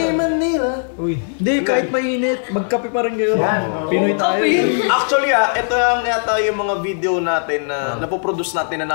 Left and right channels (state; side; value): silent; right; 60 dB below the other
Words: Manila. Hindi, kahit mainit, magkape pa rin kayo. Pinoy tayo. Actually ito yung yata yung mga video natin na napoproduce natin na